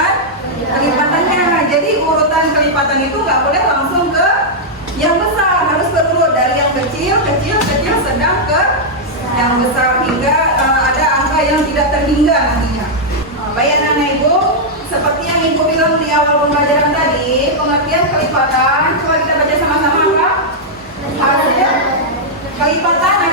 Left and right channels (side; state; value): both; normal; correlation -0.05